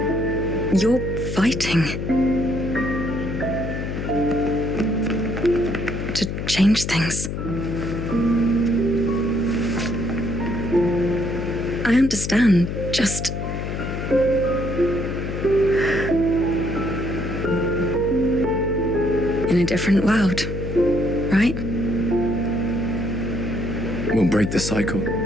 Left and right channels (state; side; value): noise; left; hum, 4 dB below the sound